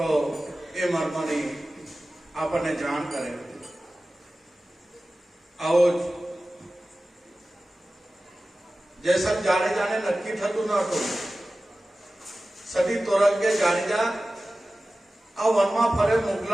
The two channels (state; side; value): normal; both; correlation 0.96